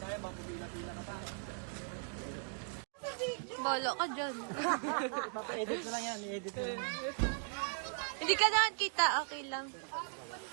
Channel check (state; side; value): silent; left; 52 dB below the other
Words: baka pumila-pila ka pa. Bolo ka dyan. Edit mo lang yan, edit mo lang. Hindi ka naman kita, okay lang.